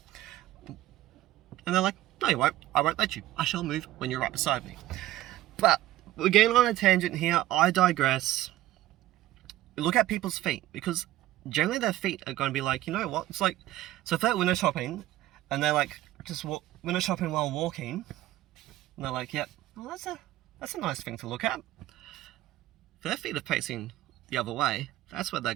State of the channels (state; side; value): quieter; left; 15.1 dB